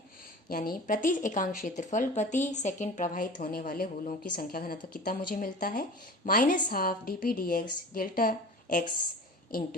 यानी प्रति एकांक क्षेत्रफल प्रति सेकंड प्रवाहित होने वाले होलों की संख्या घनत्व कितना मुझे मिलता है, -12 dp dx delta x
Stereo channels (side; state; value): both; normal; correlation 0.37